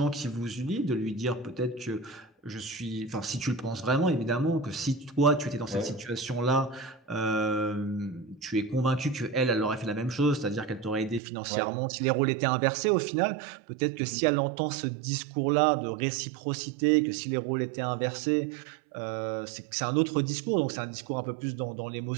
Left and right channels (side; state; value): left; drops out; at 11.2 s